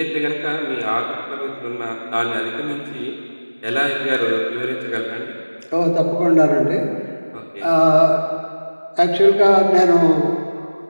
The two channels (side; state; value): both; inverted; correlation -1.00